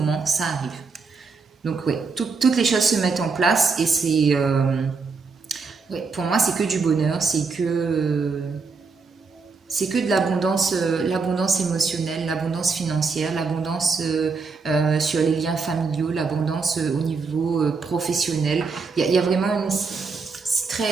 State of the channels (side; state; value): left; quieter; 4.7 dB